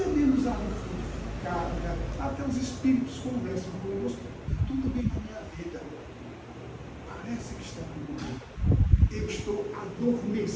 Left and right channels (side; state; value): both; identical; correlation 1.00